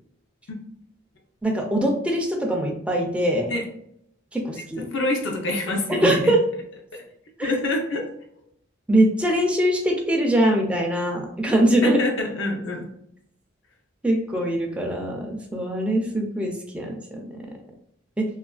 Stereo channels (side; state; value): both; normal; correlation 0.63